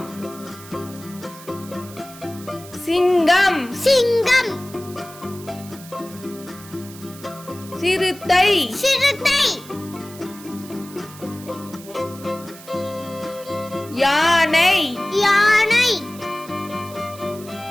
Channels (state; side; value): noise; right; hiss, 18 dB below the sound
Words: சிங்கம், சிங்கம், சிறுத்தை, சிறுத்தை, யானை, யானை,